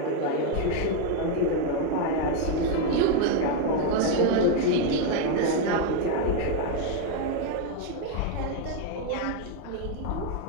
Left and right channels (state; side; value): different; both; correlation 0.01